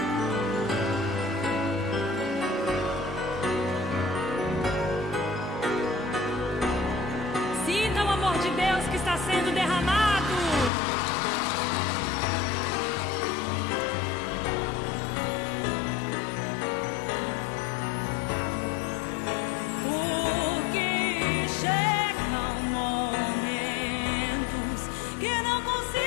Sinta o amor de Deus que está sendo derramado. Porque chegam momentos que não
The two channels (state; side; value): drops out; right; at 10.7 s